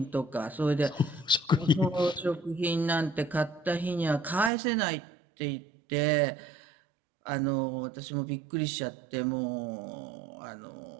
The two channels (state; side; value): drops out; left; at 4.5 s